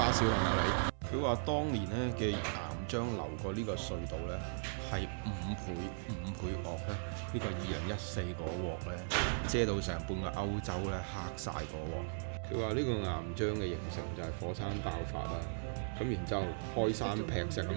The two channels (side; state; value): left; silent; 53 dB below the other